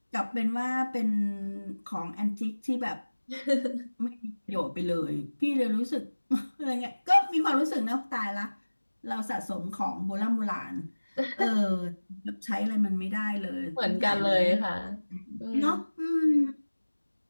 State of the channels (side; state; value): both; inverted; correlation -1.00